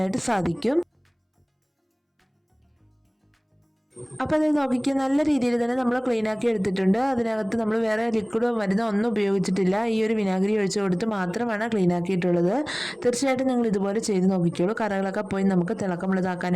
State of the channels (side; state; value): both; identical; correlation 1.00